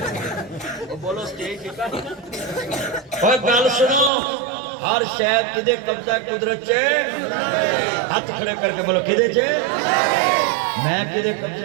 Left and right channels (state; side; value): drops out; left; at 4.1 s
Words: وہ بولو سٹیج ڈگا اور گل سنو ہر شے کدے قبضہ قدرت چے ہاتھ کھڑے کر کے بولو کدے چے میں کدے